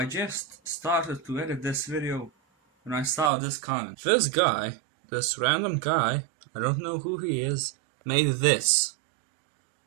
just started to edit this video when I saw this comment. This guy, this random guy, I don't know who he is, made this.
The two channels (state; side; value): drops out; left; at 3.3 s